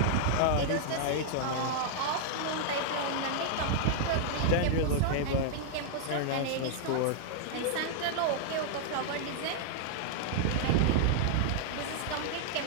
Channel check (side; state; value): both; different; correlation -0.01